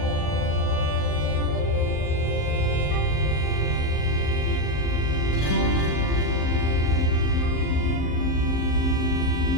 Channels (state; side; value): late; right; 38 ms